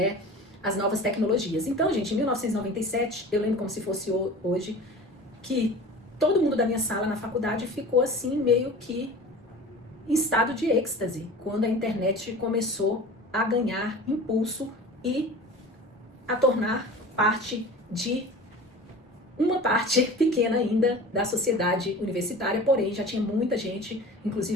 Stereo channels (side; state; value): both; normal; correlation 0.38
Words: as novas tecnologias. Então, gente, em 1997, eu lembro como se fosse hoje, que todo mundo da minha sala na faculdade ficou assim, meio que em estado de êxtase, quando a internet começou a ganhar impulso e a tornar parte de uma parte pequena ainda da sociedade universitária, porém já tinha muita gente,